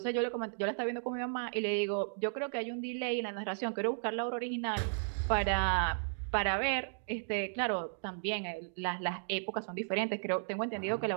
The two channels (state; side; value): silent; left; digital silence